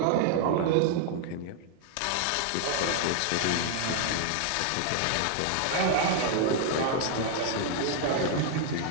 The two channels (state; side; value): different; both; correlation 0.00